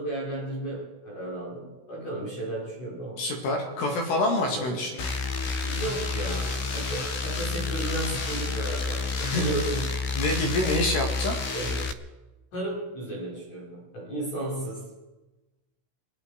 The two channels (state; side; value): late; right; 16 ms